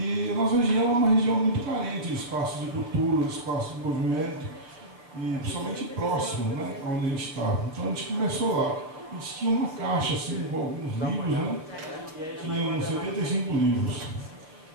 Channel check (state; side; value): late; left; 6.6 ms